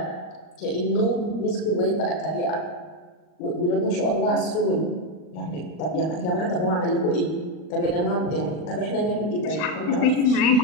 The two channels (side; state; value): right; late; 39 ms